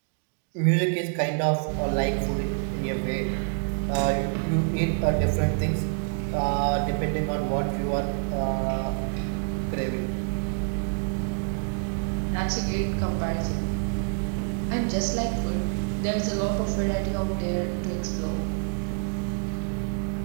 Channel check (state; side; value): silent; left; 57 dB below the other